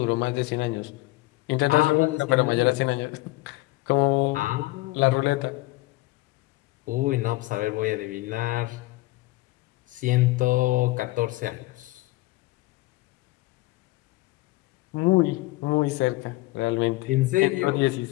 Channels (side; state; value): right; quieter; 20.3 dB